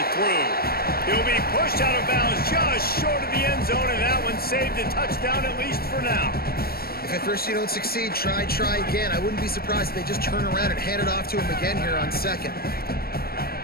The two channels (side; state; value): right; late; 0.44 ms